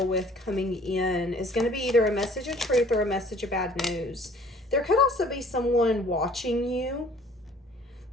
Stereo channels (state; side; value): normal; both; correlation 0.55